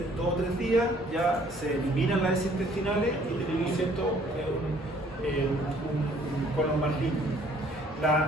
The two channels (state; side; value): normal; both; correlation 0.59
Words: 2 o 3 días ya se eliminan las heces intestinales y tenemos, ¿cierto?, un colon más limpio.